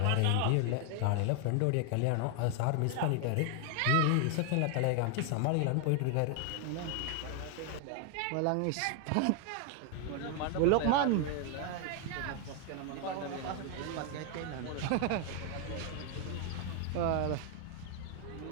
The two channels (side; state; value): both; different; correlation 0.01